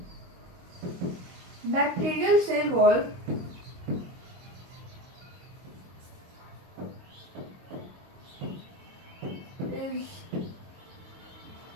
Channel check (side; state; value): left; late; 22 ms